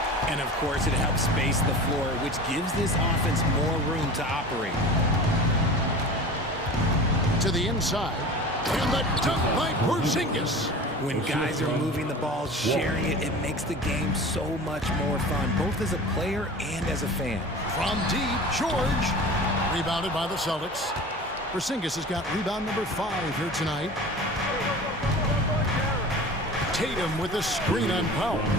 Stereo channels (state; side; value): normal; both; correlation 0.37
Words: And, of course, it helps space the floor, which gives this offense more room to operate. To the inside. And the dunk by Porzingis. When guys are moving the ball, sharing it, it makes the game so much more fun, both as a player and as a fan. From deep, George. Rebounded by the Celtics. Porzingis has got rebound number 5 here tonight. Tatum with a screen on Powell.